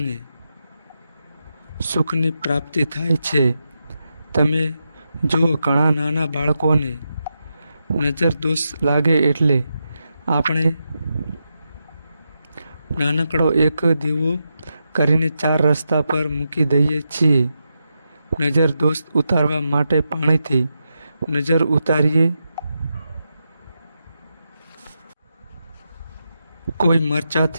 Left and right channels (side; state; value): both; inverted; correlation -0.87